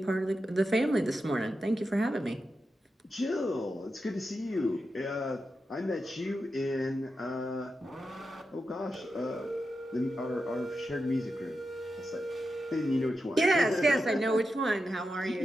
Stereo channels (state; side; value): normal; both; correlation 0.89